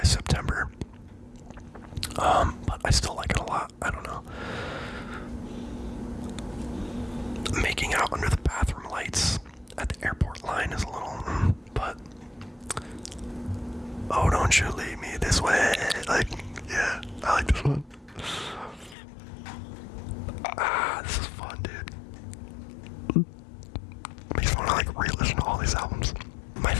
September. But I still like it a lot. I don't know. Making Out Under the Bathroom Lights at the airport line is a little, but Oh Don't You Leave Me This Way. Like, yeah, I like this one. This is fun, dude. Makes me want to like re-listen to all these albums. My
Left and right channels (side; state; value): right; drops out; at 18.9 s